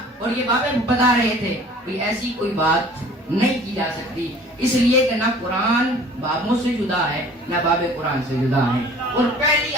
اور یہ بابے بتا رہے تھے, کوئی ایسی کوئی بات نہیں کی جا سکتی, اس لیے کہ نہ قرآن بابوں سے جدا ہے نہ باب قرآن سے جدا ہے. اور پہلی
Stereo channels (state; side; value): normal; both; correlation 0.49